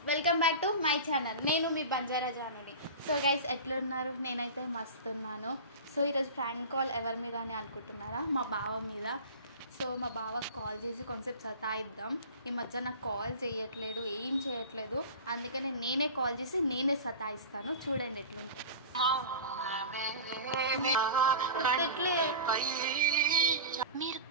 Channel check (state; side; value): inverted; both; correlation -0.33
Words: welcome back to my channel. నేను మీ బంజారా జానుని. సో గైస్, ఎట్లున్నారు? నేనైతే మస్తు ఉన్నాను. సో ఈరోజు ఫ్రాంక్ కాల్ ఎవరి మీద అని అనుకుంటున్నారా? మా బావ మీద. సో మా బావకు కాల్ చేసి కొంచెం సతాయిద్దాం. ఈ మధ్య నాకు కాల్ చేయట్లేదు, ఏం చేయట్లేదు. అందుకనే నేనే కాల్ చేసి నేనే సతాయిస్తాను. చూడండి ఎట్లుంటుంది. మీరు